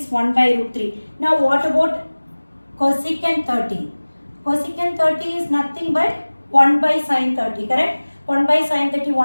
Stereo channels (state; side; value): inverted; both; correlation -1.00